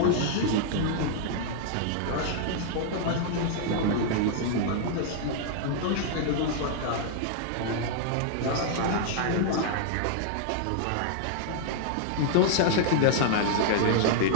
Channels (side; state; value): both; different; correlation -0.01